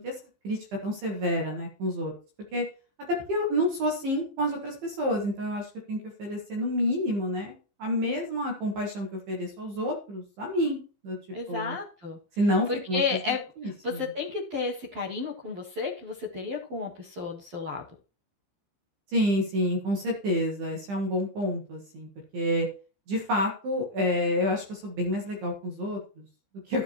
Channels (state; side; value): late; left; 15 ms